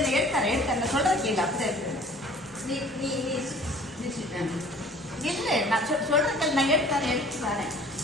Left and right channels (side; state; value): both; normal; correlation 0.49